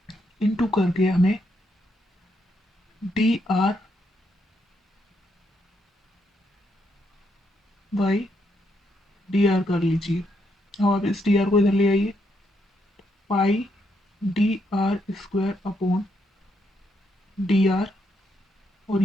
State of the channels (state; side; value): normal; both; correlation 0.77